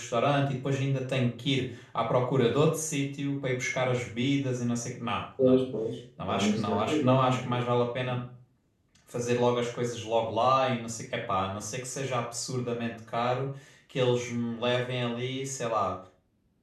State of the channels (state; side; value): identical; both; correlation 1.00